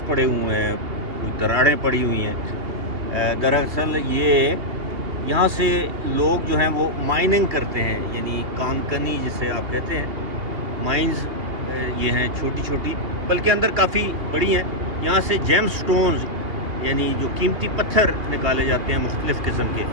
पड़े हुए हैं, दरारें पड़ी हुई हैं। दरअसल ये यहाँ से लोग जो हैं वो माइनिंग करते हैं, यानी कानकनी जिसे आप कहते हैं। माइंस ये हैं छोटी छोटी, बल्कि अंदर काफ़ी बड़ी हैं। यहाँ से जेम स्टोन्स यानी जो कीमती पत्थर निकाले जाते हैं मुख्तलिफ़ किस्म के।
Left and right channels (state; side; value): late; left; 2.5 ms